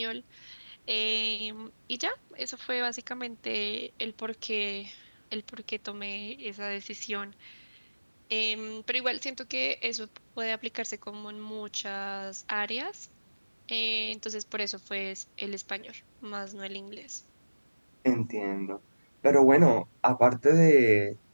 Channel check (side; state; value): both; inverted; correlation -1.00